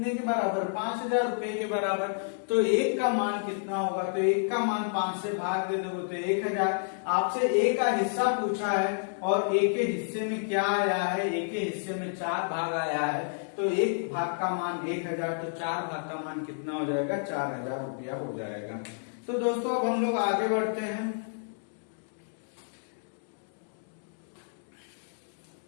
के बराबर, 5,000 रुपए के बराबर। तो 1 का मान कितना होगा, तो 1 का मान 5 से भाग दे दोगे तो 1,000। आपसे ए का हिस्सा पूछा है और ए के हिस्से में क्या आया है, ए के हिस्से में 4 भाग आया है। तो 1 भाग का मान 1,000, तो 4 भाग का मान कितना हो जाएगा, 4,000 रुपया हो जाएगा। तो दोस्तों अब हम लोग आगे बढ़ते हैं।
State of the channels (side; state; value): right; silent; digital silence